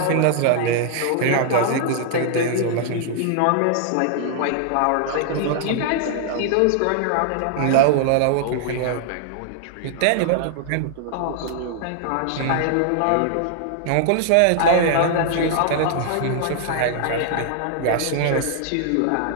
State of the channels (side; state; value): both; different; correlation -0.01